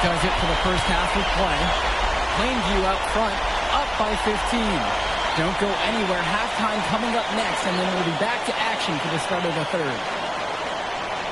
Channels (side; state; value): both; identical; correlation 1.00